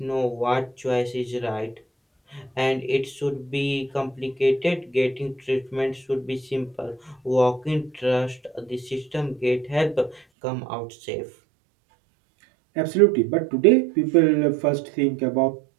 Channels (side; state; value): left; drops out; at 10.2 s